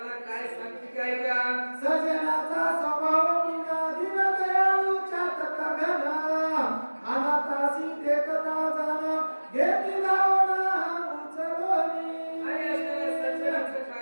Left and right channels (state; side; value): inverted; both; correlation -1.00